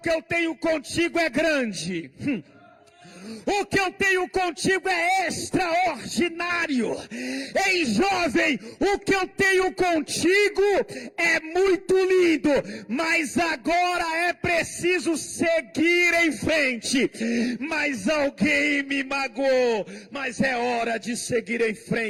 eu tenho contigo é grande. O que eu tenho contigo é extraordinário. Ei, jovem, o que eu tenho contigo é muito lindo, mas agora é preciso seguir em frente. Mas alguém me magoou, mas é hora de seguir em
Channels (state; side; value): identical; both; correlation 1.00